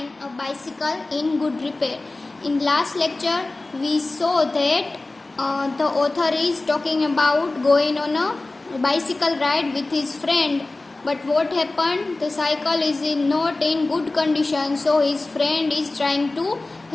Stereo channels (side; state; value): right; quieter; 3.1 dB